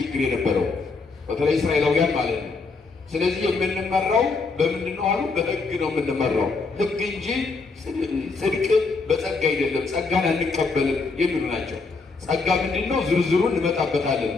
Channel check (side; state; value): right; quieter; 4.2 dB